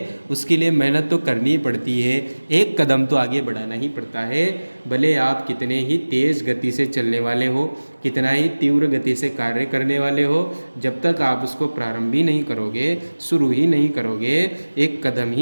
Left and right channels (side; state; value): both; inverted; correlation -1.00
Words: उसके लिए मेहनत तो करनी ही पड़ती है, एक कदम तो आगे बढ़ाना ही पड़ता है। भले आप कितने ही तेज़ गति से चलने वाले हो, कितना ही तीव्र गति से कार्य करने वाले हो, जब तक आप उसको प्रारंभ ही नहीं करोगे, शुरू ही नहीं करोगे, एक कदम